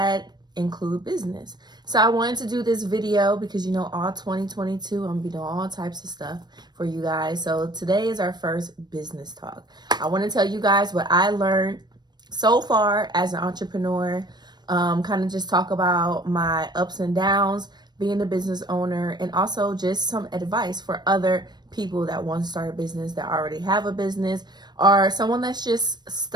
include business. So I wanted to do this video because all 2022 I'm gonna be doing all types of stuff for you guys. So today is our first business talk. I want to tell you guys what I learned so far as an entrepreneur, kind of just talk about my ups and downs being a business owner, and also just some advice for other people that want to start a business, that already have a business, or someone that's just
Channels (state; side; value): late; left; 0.20 ms